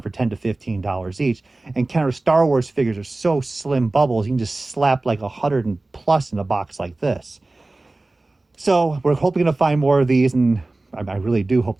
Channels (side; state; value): left; quieter; 3.0 dB